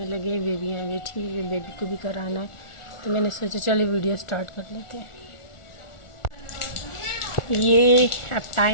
लगे, बेबियाँ बैठी हुई, बेबी को भी कराना है तो मैंने सोचा चले वीडियो स्टार्ट कर लेते हैं। ये अब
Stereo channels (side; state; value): right; late; 1.4 ms